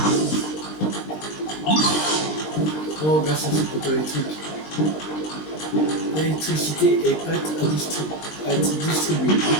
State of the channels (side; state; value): right; late; 20 ms